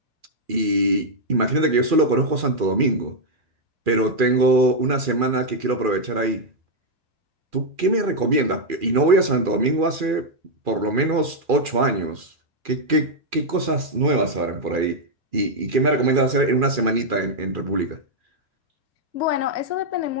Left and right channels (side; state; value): left; late; 2.4 ms